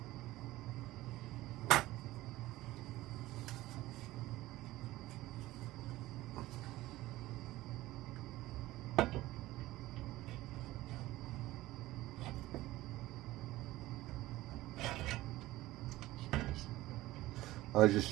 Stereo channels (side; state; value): left; quieter; 17.3 dB